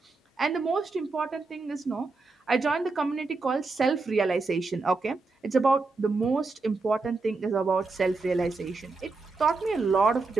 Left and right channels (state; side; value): quieter; left; 3.8 dB